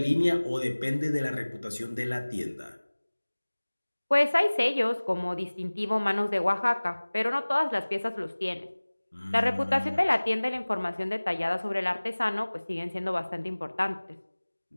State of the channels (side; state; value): both; inverted; correlation -1.00